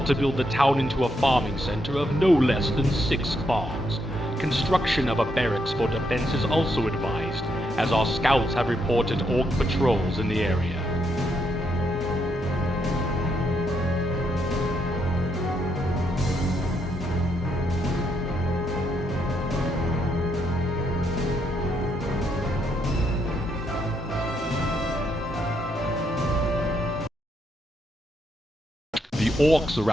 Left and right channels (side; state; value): both; normal; correlation 0.77